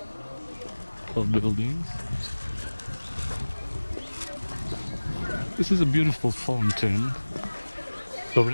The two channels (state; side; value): inverted; both; correlation -1.00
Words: of buildings. This is a beautiful fountain